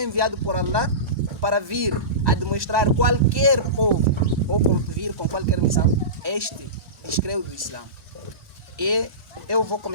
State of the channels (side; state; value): left; late; 1.2 ms